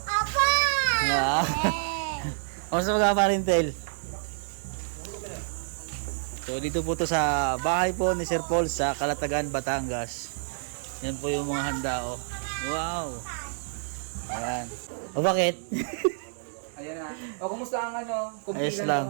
Apa! Kamusta mag-apa rin, Entel? So dito po to sa bahay po ni Sir Paul sa Calatagan, Batangas. Yan po yung mga handa, oh. Wow! Ayan. O bakit? Ayan na. O kumusta ang ano? Ayos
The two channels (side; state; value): left; silent; 59 dB below the other